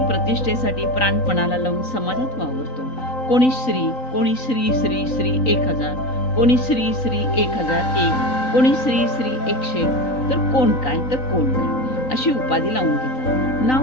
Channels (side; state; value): right; late; 3.9 ms